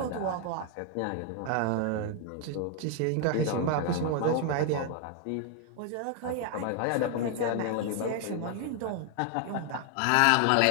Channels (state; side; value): different; both; correlation 0.00